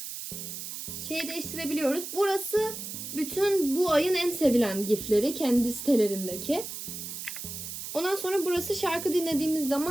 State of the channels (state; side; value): noise; right; hiss, 8 dB below the sound